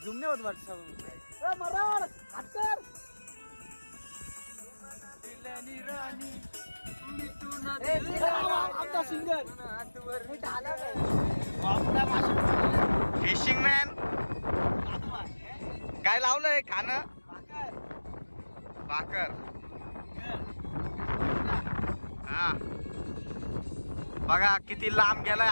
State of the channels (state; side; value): inverted; both; correlation -1.00